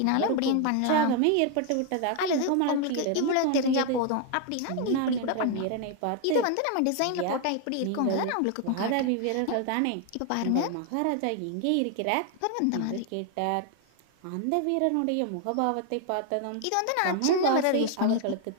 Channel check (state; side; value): different; both; correlation 0.01